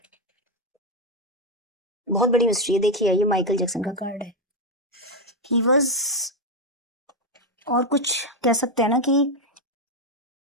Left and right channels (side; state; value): both; normal; correlation 0.06